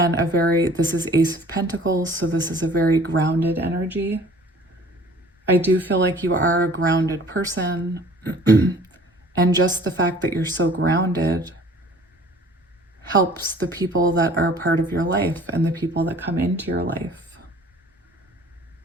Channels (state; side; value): normal; both; correlation 0.50